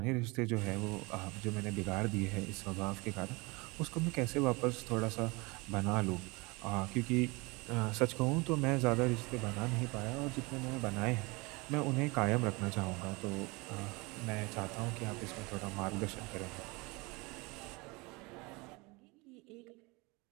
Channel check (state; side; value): quieter; left; 25.9 dB